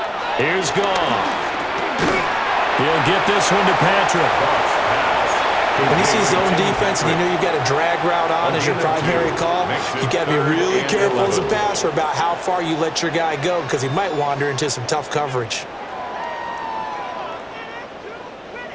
Here's Goff. He'll get this one to Patrick. When you see zone defense and you know you've got a drag route on as your primary call, you've got to be really careful as a passer about how far you let your guy go, because he might wander into some tough coverage.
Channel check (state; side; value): identical; both; correlation 1.00